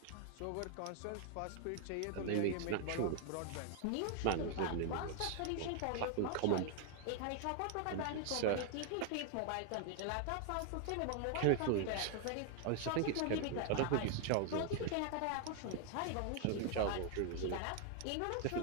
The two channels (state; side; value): different; both; correlation 0.00